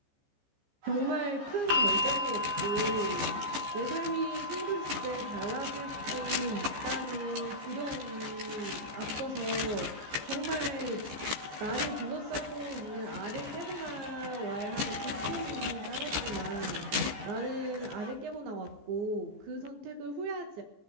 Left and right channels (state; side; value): late; left; 14 ms